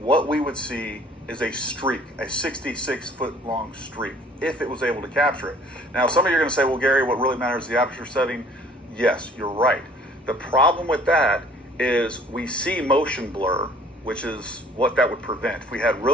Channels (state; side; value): normal; both; correlation 0.54